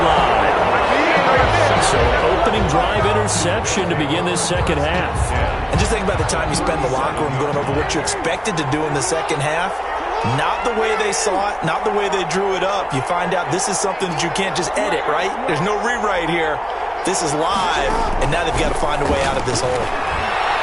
line. So opening drive interception to begin this second half. And just think about the time you spend in the locker room going over what you expected to do in the second half. Not the way they saw it, not the way they drew it up. You find out this is something that you can't just edit, right? There's no rewrite here. This is live, and now they've got to find a way out of this hole.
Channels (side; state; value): both; identical; correlation 1.00